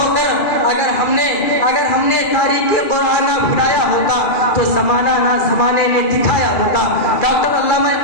अगर हमने तारीख़े क़ुरान ना भुलाया होता तो ज़माना ना ज़माने में दिखाया होता। डॉक्टर अल्लामा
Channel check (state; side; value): late; right; 2.4 ms